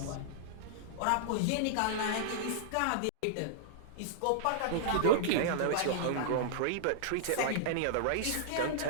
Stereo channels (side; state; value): both; different; correlation -0.02